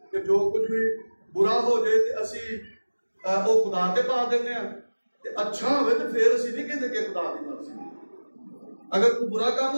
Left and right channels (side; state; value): both; inverted; correlation -1.00